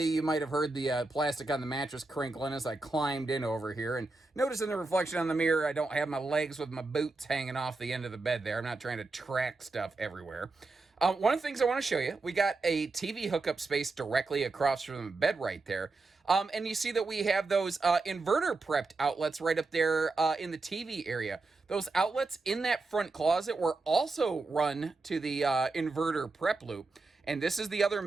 you might have heard the plastic on the mattress crinkling as I climbed in over here, and notice in the reflection on the mirror, I don't have my legs with my boots hanging off the end of the bed there. I'm not trying to track stuff everywhere. One of the things I want to show you, we got a TV hookup space directly across from the bed right there. And you see that we have those inverter prepped outlets right up there in the TV area. Those outlets in that front closet were also run to the inverter prep loop. And this is the other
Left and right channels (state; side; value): quieter; left; 3.5 dB